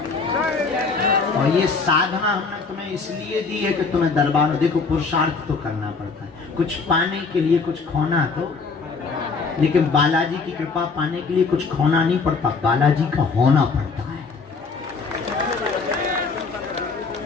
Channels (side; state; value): right; quieter; 4.6 dB